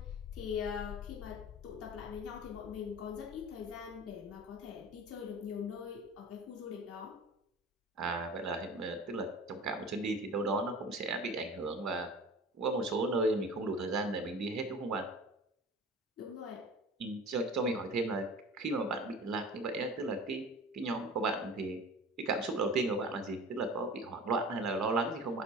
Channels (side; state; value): both; normal; correlation 0.39